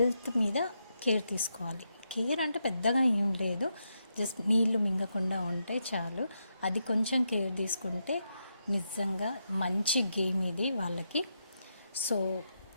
మీద కేర్ తీసుకోవాలి. కేర్ అంటే పెద్దగా ఏం లేదు, జస్ట్ నీళ్లు మింగకుండా ఉంటే చాలు. అది కొంచెం కేర్ తీసుకుంటే నిజంగా మంచి గేమ్ ఇది వాళ్ళకి. సో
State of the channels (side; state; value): both; inverted; correlation -0.83